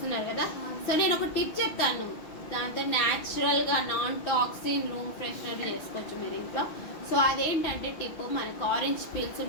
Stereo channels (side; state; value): right; late; 5.9 ms